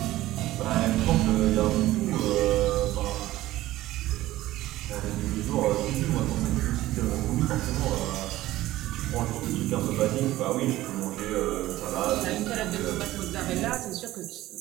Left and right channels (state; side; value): quieter; left; 15.9 dB